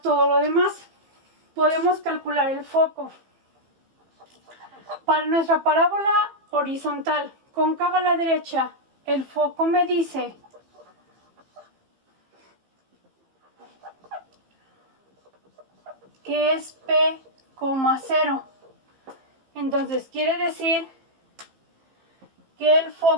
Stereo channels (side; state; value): left; late; 15 ms